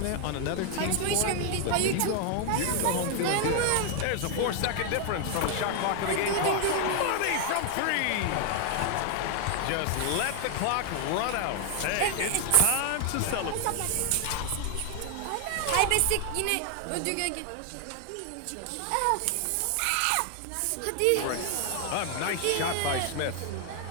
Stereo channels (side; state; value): both; different; correlation 0.00